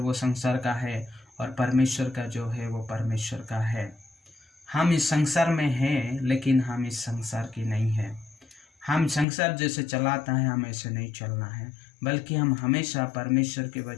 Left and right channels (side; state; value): right; drops out; at 9.2 s